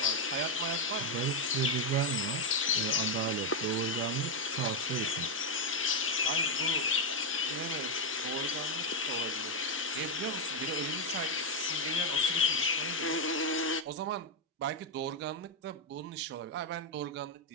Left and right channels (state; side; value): normal; both; correlation 0.03